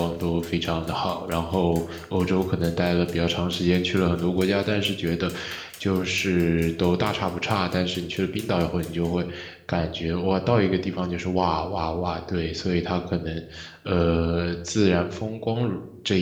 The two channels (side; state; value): both; identical; correlation 1.00